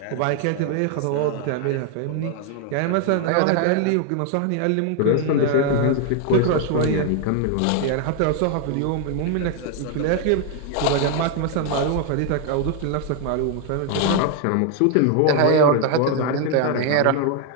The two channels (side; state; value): both; different; correlation 0.01